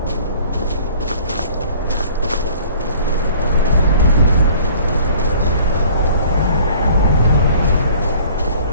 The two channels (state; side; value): inverted; both; correlation -0.51